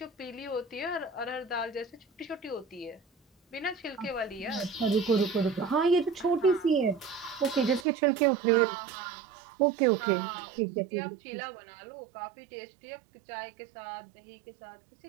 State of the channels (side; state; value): left; drops out; at 7.9 s